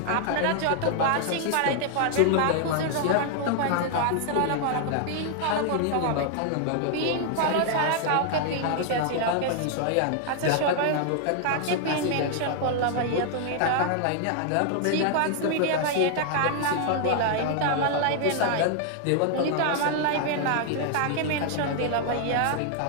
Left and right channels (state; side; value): different; both; correlation 0.00